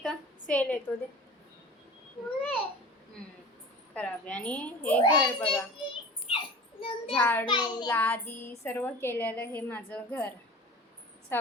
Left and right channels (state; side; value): normal; both; correlation 0.38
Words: सेल येतो दे. खराब आहे. आणि हे घर बघा, झाडू लादी सर्व केलेलं हे माझं घर.